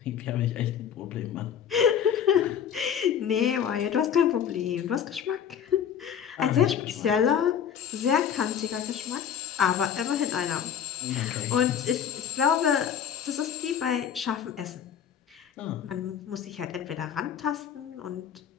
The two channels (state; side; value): quieter; right; 8.5 dB